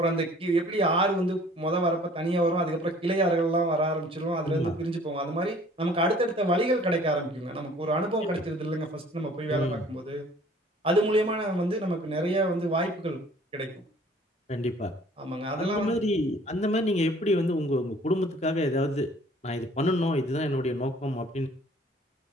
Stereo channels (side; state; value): both; normal; correlation 0.53